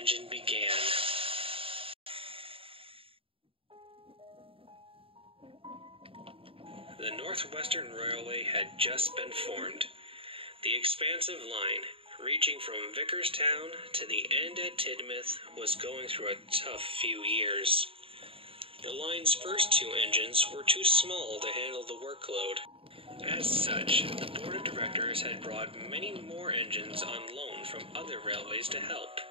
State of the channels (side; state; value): left; late; 0.27 ms